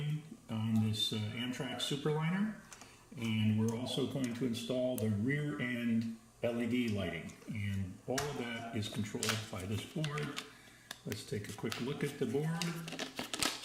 on this Amtrak Superliner, and we're also going to install the rear end LED lighting, and all of that is controlled by this board. Let's take a quick look at the board.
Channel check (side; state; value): both; identical; correlation 1.00